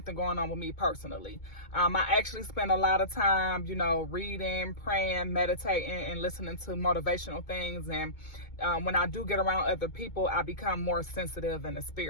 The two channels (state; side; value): late; right; 2.2 ms